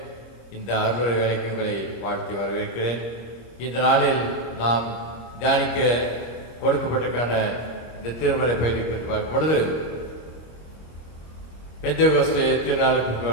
இந்த அருளுரை வேலைக்கு உங்களை வாழ்த்தி வரவேற்கிறேன். இந்த நாளில் நாம் தியானிக்க கொடுக்கப்பட்டிருக்கான இந்த திருமறை பகுதி குறித்து பார்க்கும் பொழுது, பெந்தேகோஸ்தே திருநாளுக்கு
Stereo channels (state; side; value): late; right; 26 ms